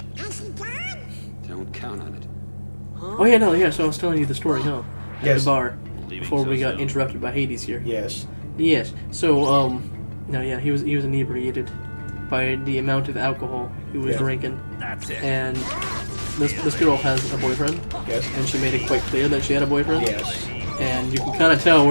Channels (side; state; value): both; inverted; correlation -1.00